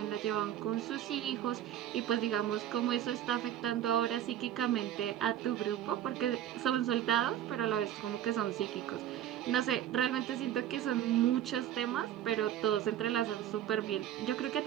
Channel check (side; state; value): left; quieter; 11.4 dB